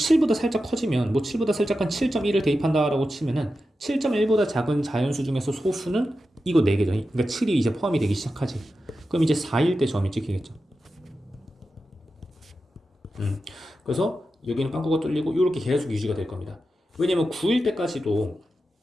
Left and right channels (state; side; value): normal; both; correlation 0.91